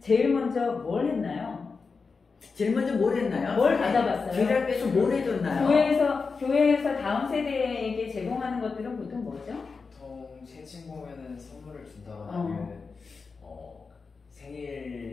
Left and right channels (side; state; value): right; quieter; 4.7 dB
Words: 먼저 뭘 했나요? 제일 먼저 뭘 했나요? 뭘 받아봤어요? 주일학교에서 뭘 해줬나요? 교회에서 다음 세대에게 제공하는 것들은 보통 뭐죠? 보통 채팅 보면은 선물을 준다거나 아니면